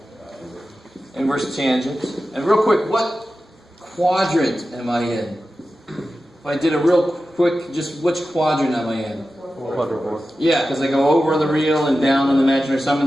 Inverse tangent. And real quick, what quadrant am I in? If I did a real quick, just which quadrant am I in? Fourth. Yeah, because I go over the real and down on the imaginary, so I'm in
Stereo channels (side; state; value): both; normal; correlation 0.93